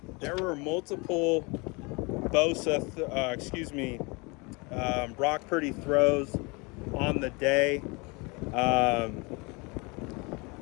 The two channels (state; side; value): quieter; right; 28.0 dB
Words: multiple Bosa, Brock Purdy throws on the day.